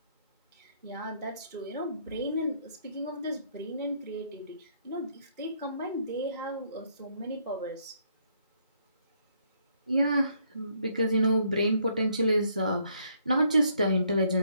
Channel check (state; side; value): inverted; both; correlation -0.70